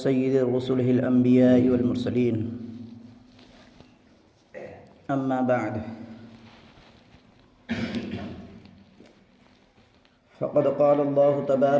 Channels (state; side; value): identical; both; correlation 1.00